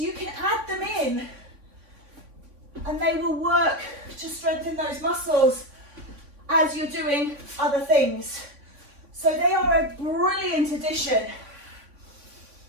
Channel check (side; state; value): left; late; 3.5 ms